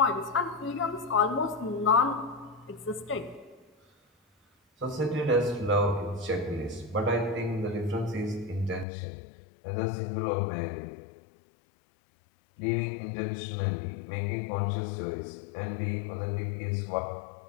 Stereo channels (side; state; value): right; drops out; at 8.8 s